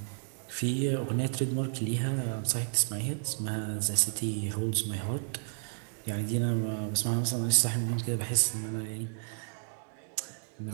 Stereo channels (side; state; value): left; silent; digital silence